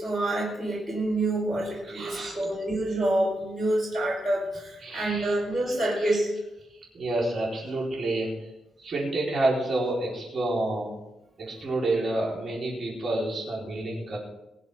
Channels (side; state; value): both; normal; correlation 0.85